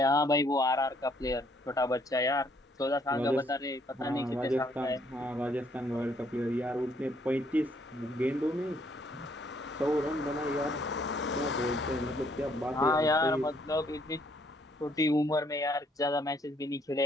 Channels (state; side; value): normal; both; correlation 0.67